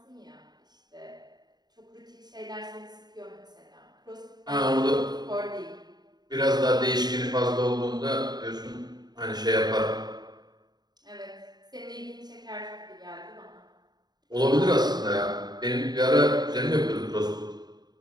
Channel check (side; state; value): left; late; 0.20 ms